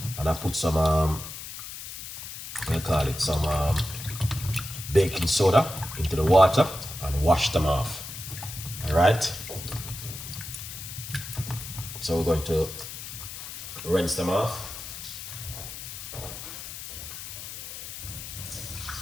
and I put some some baking soda into the water and wash them off. All right. So we're going to rinse them off.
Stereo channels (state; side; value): noise; left; hiss, 10 dB below the sound